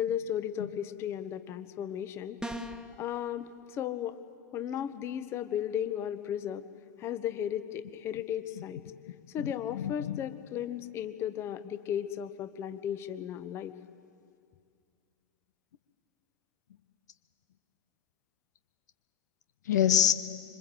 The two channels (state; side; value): quieter; right; 9.1 dB